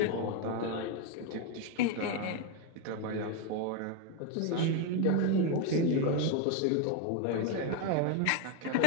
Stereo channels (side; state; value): both; different; correlation 0.02